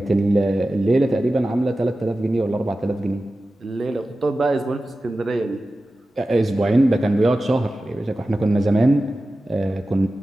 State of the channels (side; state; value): both; normal; correlation 0.95